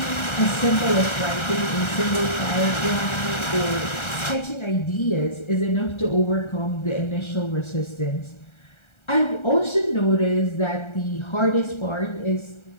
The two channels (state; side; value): late; right; 1.3 ms